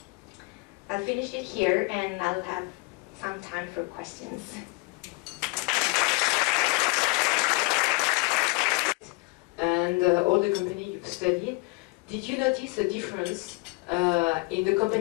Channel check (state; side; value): quieter; right; 27.7 dB